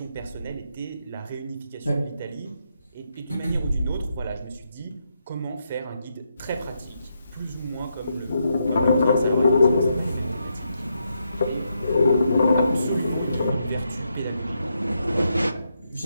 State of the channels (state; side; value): inverted; both; correlation -0.81